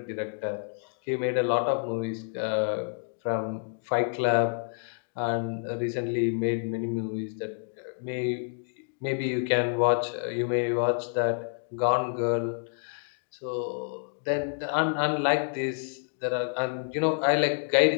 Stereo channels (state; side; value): silent; right; digital silence